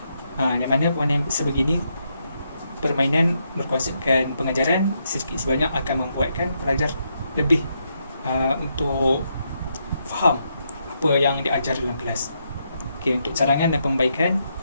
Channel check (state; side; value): inverted; both; correlation -0.79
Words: Yang mana permainan sebegini, permainan berkonsepkan pengajaran sedikit sebanyak akan membuatkan pelajar lebih untuk faham apa yang diajar dalam kelas. Okey, untuk cadangan dan pembaikan.